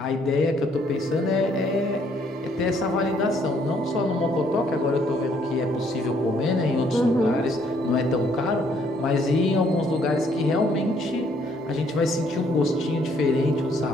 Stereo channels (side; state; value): both; normal; correlation 0.67